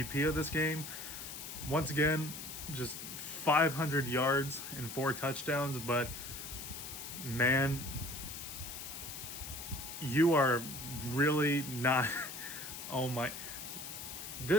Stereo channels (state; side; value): noise; left; hiss, 9 dB below the sound